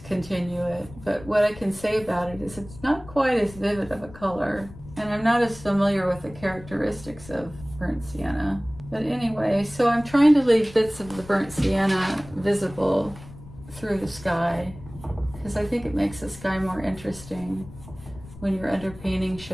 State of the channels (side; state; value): left; noise; rumble, 17 dB below the sound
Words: continue it. But what I can say about it is it's not quite as vivid of a color, and I'm not as familiar with the characteristics of burnt sienna. But anyway, so I'm trying to leave bits of the burnt sienna visible through the sky, because I think it makes the sky more interesting when your underpainting